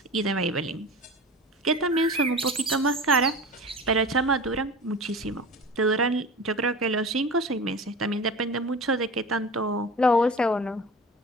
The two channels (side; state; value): both; normal; correlation 0.35